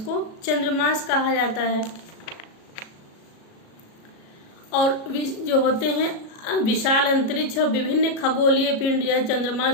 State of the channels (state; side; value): late; right; 37 ms